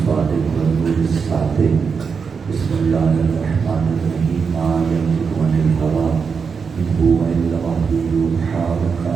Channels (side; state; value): left; quieter; 5.7 dB